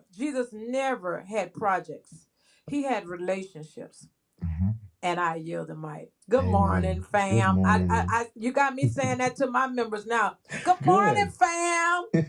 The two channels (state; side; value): identical; both; correlation 1.00